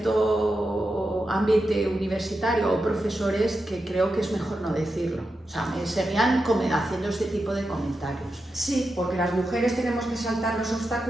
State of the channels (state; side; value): normal; both; correlation 0.89